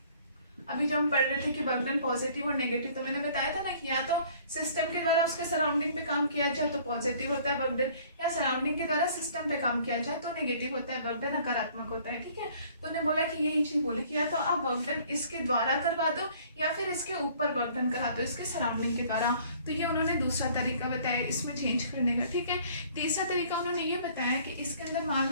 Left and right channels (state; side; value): inverted; both; correlation -0.55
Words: अभी जो हम पढ़ रहे थे कि वर्क डन पॉजिटिव और नेगेटिव, तो मैंने बताया था ना कि या तो सिस्टम के द्वारा उसके सराउंडिंग पे काम किया जाए तो पॉजिटिव होता है वर्क डन, या सराउंडिंग के द्वारा सिस्टम पे काम किया जाए तो नेगेटिव होता है वर्क डन, नकारात्मक होता है, ठीक है। तो उन्होंने बोला कि यही चीज बोली कि या तो आप वर्क डन इसके द्वारा करवा दो या फिर इसके ऊपर वर्क डन करा दो, इसके सराउंडिंग के द्वारा। तो ये उन्होंने दूसरा तरीका बताया इसमें चेंज करने का, ठीक है। तीसरा तरीका उन्होंने ये बताया कि इसके अंदर मान